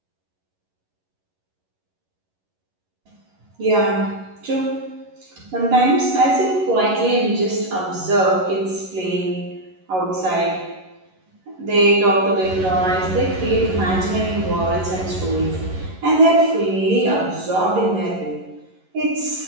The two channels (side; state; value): left; late; 11 ms